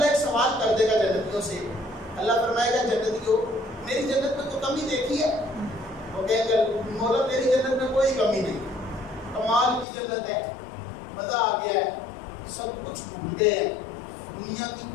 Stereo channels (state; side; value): drops out; right; at 9.9 s